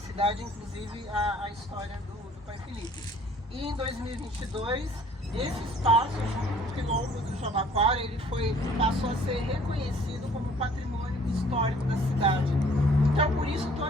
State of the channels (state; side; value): normal; both; correlation 0.55